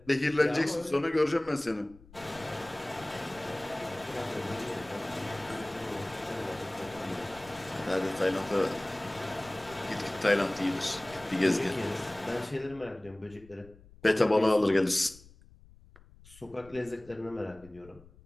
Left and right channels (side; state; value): left; noise; rumble, 23 dB below the sound